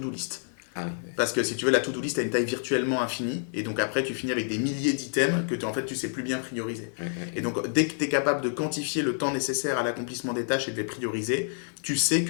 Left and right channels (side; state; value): right; silent; 59 dB below the other